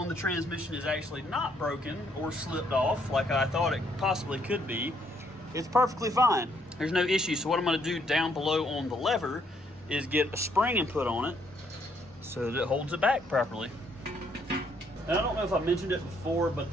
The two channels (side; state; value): both; normal; correlation 0.70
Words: the transmission is actually not broken or slipped off like I thought it possibly could be. It's perfectly fine. There's no issue. So what I'm going to do down below on the lever is get a spring and put on it so that it holds it back properly. And I don't know if I mentioned it before, but